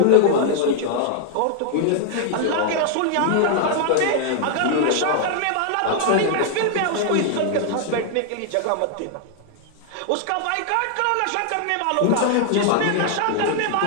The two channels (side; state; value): both; different; correlation -0.01